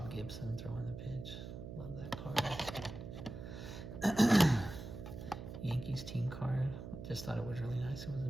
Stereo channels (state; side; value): noise; right; hum, 9 dB below the sound